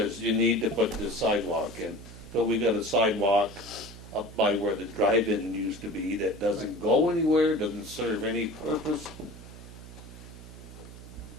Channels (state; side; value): noise; right; hum, 15 dB below the sound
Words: you need to put this sidewalk in. So we got a sidewalk up by where the drive-in used to be that doesn't go anywhere, doesn't serve any purpose.